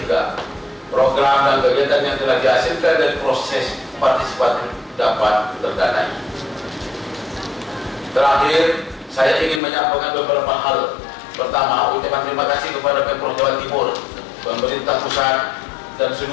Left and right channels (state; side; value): drops out; right; at 9.6 s